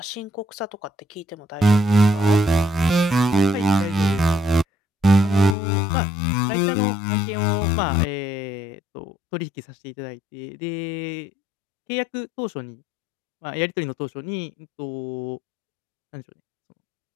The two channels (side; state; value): right; drops out; at 5.6 s